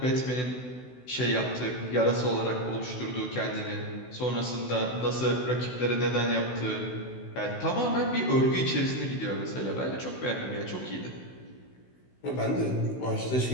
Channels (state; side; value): late; right; 16 ms